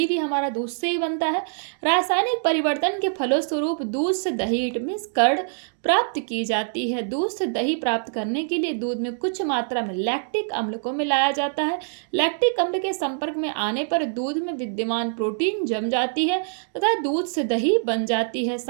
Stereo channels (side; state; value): left; silent; digital silence